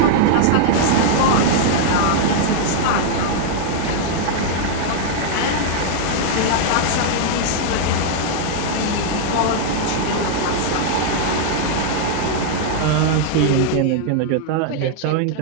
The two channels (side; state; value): both; different; correlation -0.01